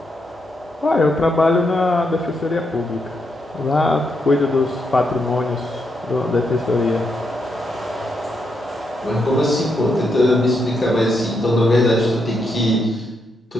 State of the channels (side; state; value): both; normal; correlation 0.81